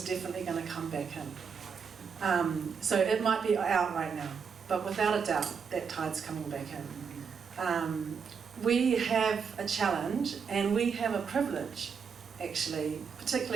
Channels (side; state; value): left; quieter; 6.2 dB